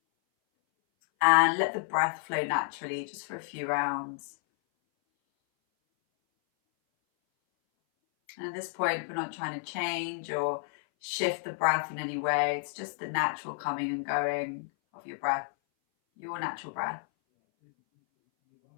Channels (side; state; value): right; silent; 57 dB below the other